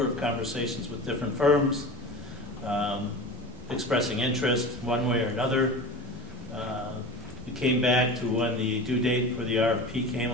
of conversations with different firms, expressing interest one way or another. We came back to when the due date for the RFP came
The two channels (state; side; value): normal; both; correlation 0.31